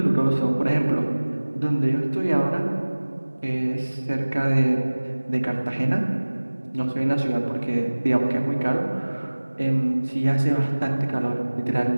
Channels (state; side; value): inverted; both; correlation -1.00